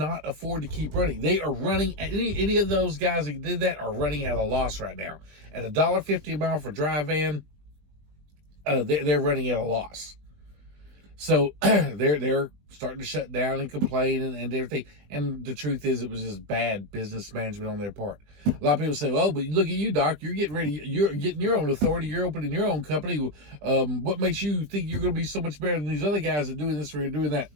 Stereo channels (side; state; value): left; late; 20 ms